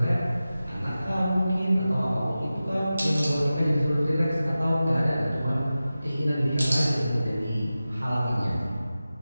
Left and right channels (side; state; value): both; inverted; correlation -0.95